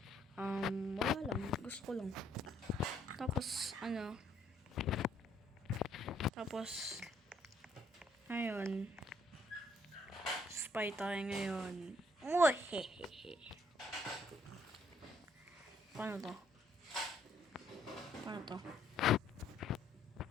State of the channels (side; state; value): both; normal; correlation 0.67